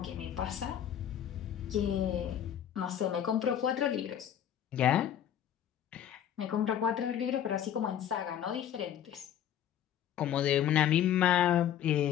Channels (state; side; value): quieter; right; 10.1 dB